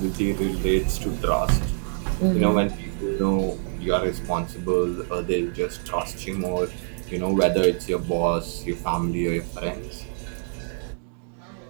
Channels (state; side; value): silent; left; digital silence